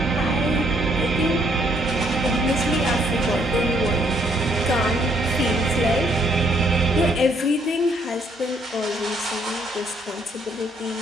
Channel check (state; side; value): normal; both; correlation 0.68